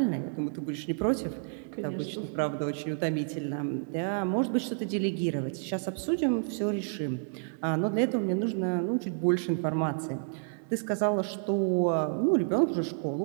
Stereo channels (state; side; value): silent; left; digital silence